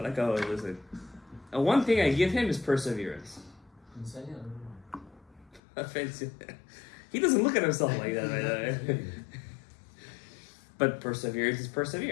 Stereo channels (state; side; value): drops out; right; at 5.6 s